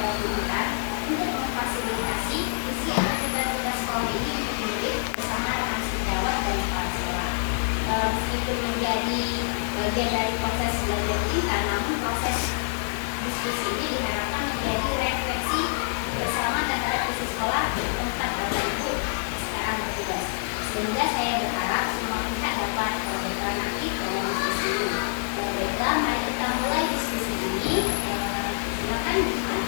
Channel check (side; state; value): right; silent; digital silence